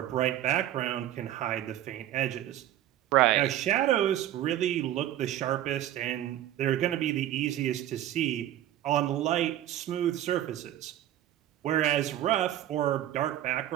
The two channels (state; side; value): quieter; left; 12.5 dB